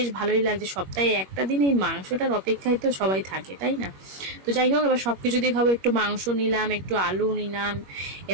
ভালোই লাগছে। সপ্তাহে একটা দিন এই মাংসটার অপেক্ষায় তো সবাই থাকে, তাই না? তো যাই হোক, এবার সবকিছু দিয়ে খাবো। একটু মাংস নিলাম, একটু আলু নিলাম,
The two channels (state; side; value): late; left; 21 ms